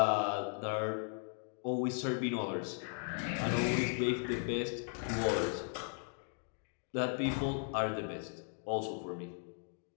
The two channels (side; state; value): right; silent; 53 dB below the other